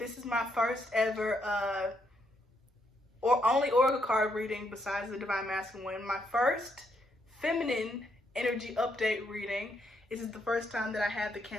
is my first ever only oracle card reading besides the Divine Masculine one. My first Feminine Energy Update reading. This is the first time that I have the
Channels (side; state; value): both; normal; correlation 0.76